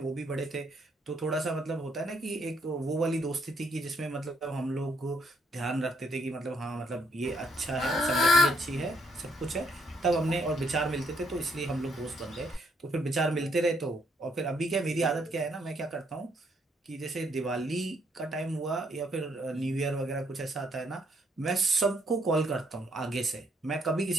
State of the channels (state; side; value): normal; both; correlation 0.71